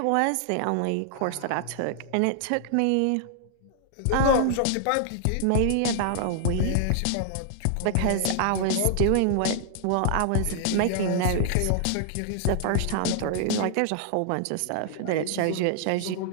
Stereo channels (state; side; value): different; both; correlation -0.01